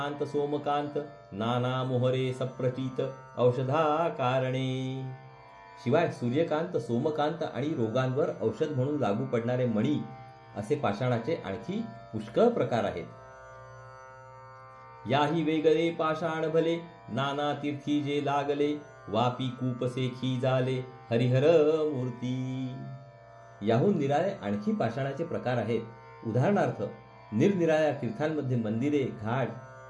सोमकांत, नाना मोहरे सप्रचित, औषधा कारणे. शिवाय सूर्यकांत सोमकांत आणि रोगांवर औषध म्हणून लागू पडणारे मणी असे पाषाणाचे आणखी पुष्कळ प्रकार आहेत. याही वेगळे पाषाण भले, नाना तीर्थी जे लागले, वापी कूपसेखी झाले, हरिहर मूर्ती. याहून निराळे आणखी पाषाणाचे प्रकार आहेत. उदाहरणार्थ, निरनिराळ्या तीर्थांमध्ये मंदिरे, घाट,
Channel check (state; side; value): identical; both; correlation 1.00